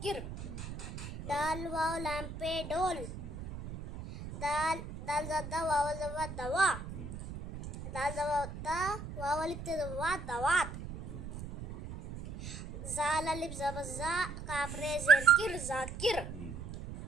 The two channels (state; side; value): noise; right; rumble, 9 dB below the sound